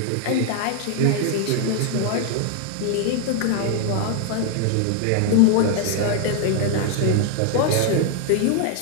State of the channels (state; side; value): different; both; correlation 0.00